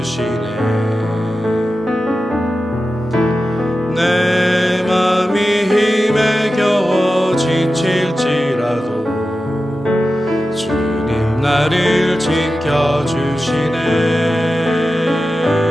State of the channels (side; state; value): both; normal; correlation 0.93